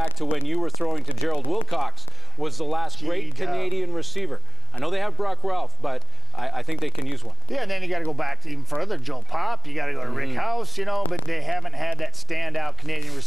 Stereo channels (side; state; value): both; normal; correlation 0.93